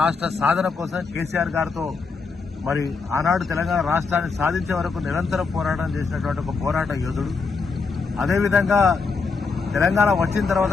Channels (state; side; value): quieter; right; 4.7 dB